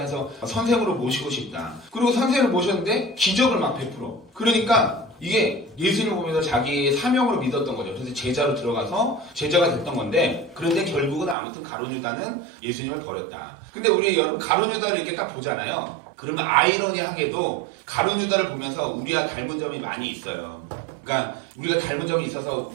선생으로 모시고 싶다. 그리고 선생을 모셨는데 기적을 막 베풀어. 그러니까 이게 예수님을 보면서 자기의 사명으로 믿었던 거죠. 그래서 제자로 들어가서 제자가 됐던 건데, 그런데 결국은 아무튼 가룟유다는 예수님을 버렸다. 근데 우리 여러분 가룟유다를 이렇게 딱 보잖아요. 그러면 아이러니하게도 가룟유다를 보면서 우리와 닮은 점이 많이 있어요. 그러니까 우리가 닮은 점이 있어서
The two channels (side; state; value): left; drops out; at 11.4 s